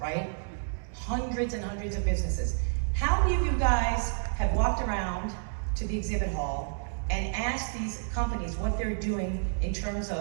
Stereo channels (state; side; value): silent; left; 58 dB below the other